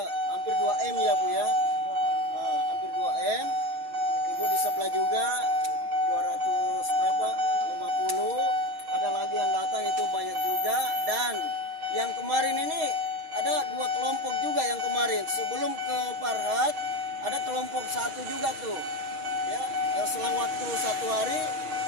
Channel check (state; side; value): late; left; 6.4 ms